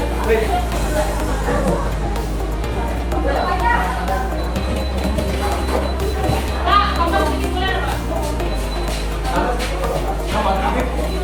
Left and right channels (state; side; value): identical; both; correlation 1.00